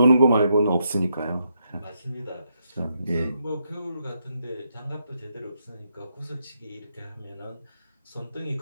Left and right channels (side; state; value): both; inverted; correlation -0.79